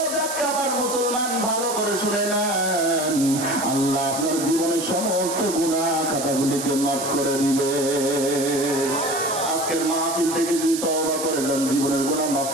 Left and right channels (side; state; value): right; noise; hiss, 6 dB below the sound